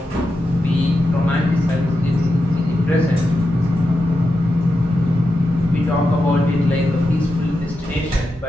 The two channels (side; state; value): both; normal; correlation 0.88